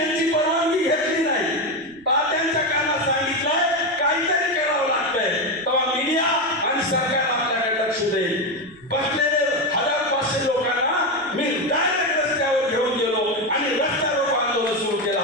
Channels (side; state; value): right; noise; rumble, 29 dB below the sound